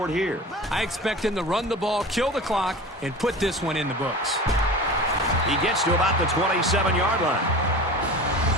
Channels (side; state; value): both; normal; correlation 0.34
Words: here. I expect him to run the ball, kill the clock, and put this one in the books. He gets to about the 27-yard line.